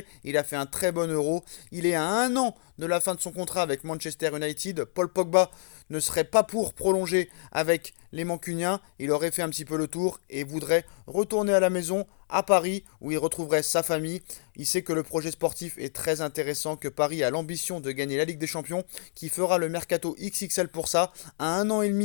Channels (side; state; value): right; silent; digital silence